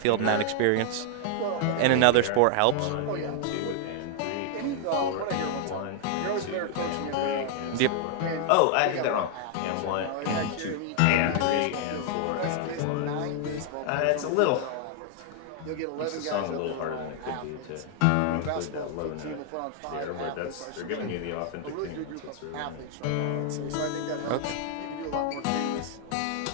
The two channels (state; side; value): different; both; correlation 0.00